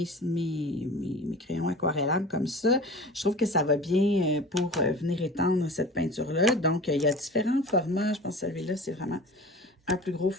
crayons aquarellables comme ça. Je trouve que ça va bien pour venir étendre cette peinture-là. Donc, il y a différents formats. Je pense que celui-là, c'est vraiment un plus gros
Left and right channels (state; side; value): normal; both; correlation 0.38